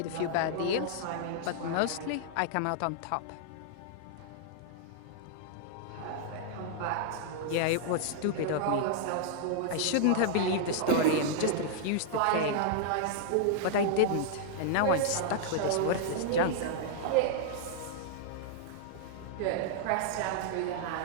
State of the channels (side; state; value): both; different; correlation -0.01